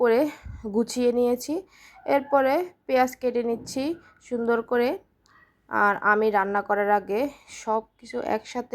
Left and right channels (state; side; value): identical; both; correlation 1.00